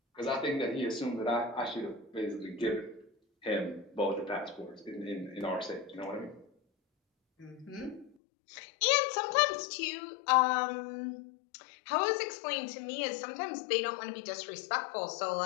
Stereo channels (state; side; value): drops out; right; at 8.1 s